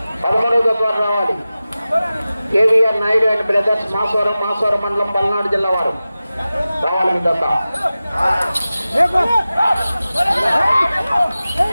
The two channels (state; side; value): inverted; both; correlation -0.96